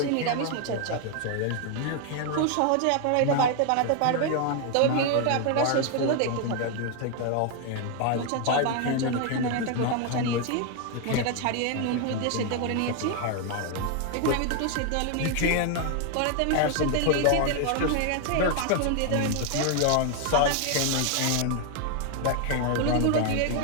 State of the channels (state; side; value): different; both; correlation 0.01